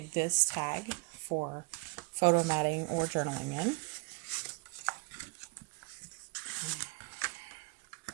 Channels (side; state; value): left; quieter; 30.2 dB